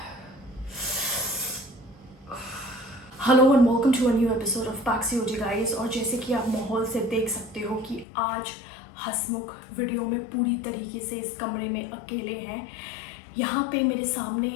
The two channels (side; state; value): right; drops out; at 8.1 s